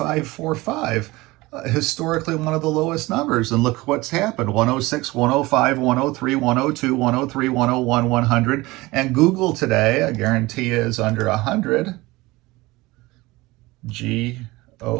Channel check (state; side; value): quieter; left; 20.8 dB